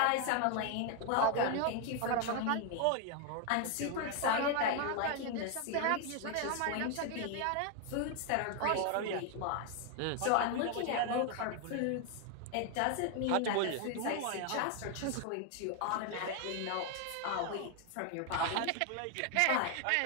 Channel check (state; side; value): different; both; correlation 0.01